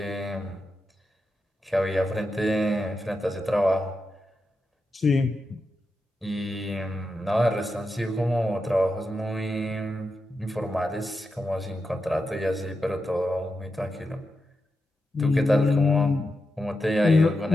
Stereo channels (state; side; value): normal; both; correlation 0.88